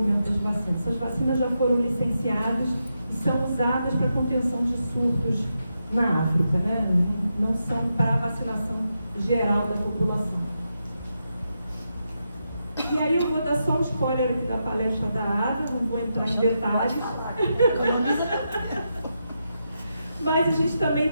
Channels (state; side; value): inverted; both; correlation -0.85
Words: das vacinas. Essas vacinas já foram licenciadas e são usadas para contenção de surtos na África, né? Não são para a vacinação geral da população. E aí eu vou dar só um spoiler aqui da palestra da Ada, não vou entrar em detalhes. Mas a gente também